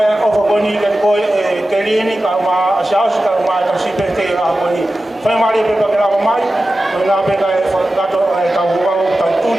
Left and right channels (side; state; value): both; normal; correlation 0.94